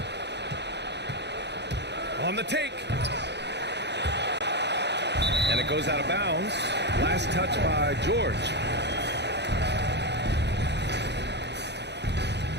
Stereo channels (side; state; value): left; late; 0.50 ms